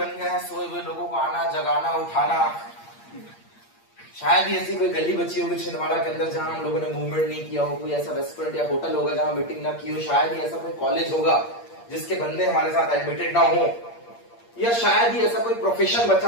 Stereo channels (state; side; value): late; right; 8.6 ms